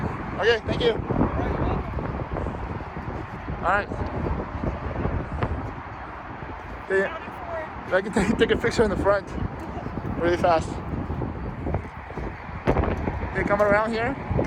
Okay, thank you. Alright, you're welcome. Alright. I can take a picture in the front really fast. Okay, coming around here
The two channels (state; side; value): identical; both; correlation 1.00